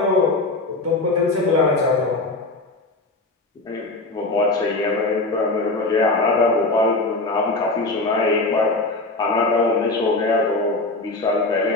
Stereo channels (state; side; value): quieter; right; 3.1 dB